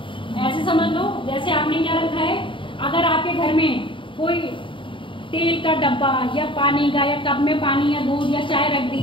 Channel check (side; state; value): right; late; 0.25 ms